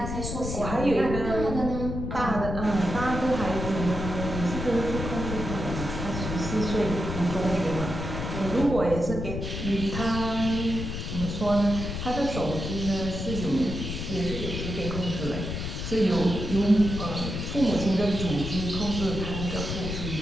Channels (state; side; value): noise; left; rumble, 5 dB below the sound